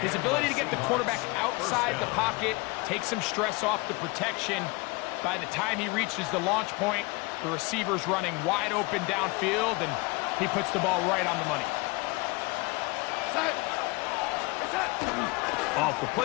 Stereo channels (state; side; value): quieter; right; 25.9 dB